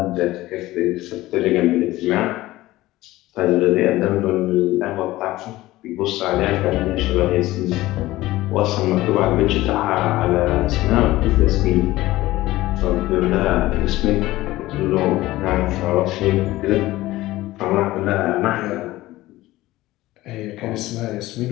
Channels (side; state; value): right; quieter; 17.3 dB